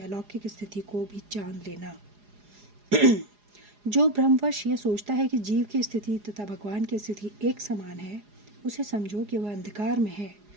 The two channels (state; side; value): late; left; 4.8 ms